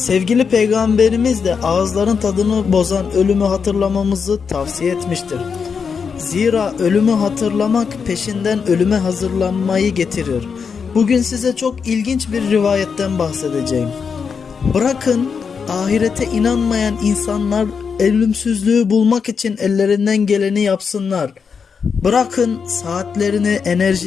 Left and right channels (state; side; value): quieter; right; 6.0 dB